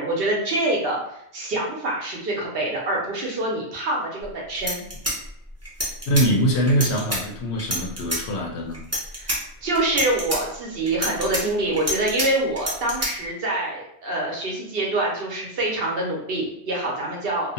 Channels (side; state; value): both; normal; correlation -0.04